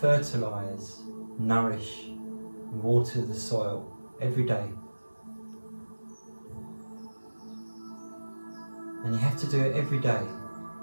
nourish, and water the soil every day. And you have to do it every day,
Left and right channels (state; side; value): inverted; both; correlation -1.00